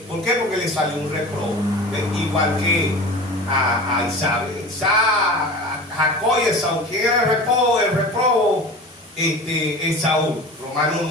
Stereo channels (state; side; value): normal; both; correlation 0.35